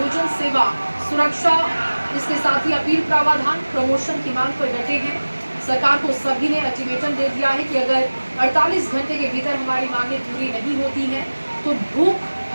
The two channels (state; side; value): inverted; both; correlation -1.00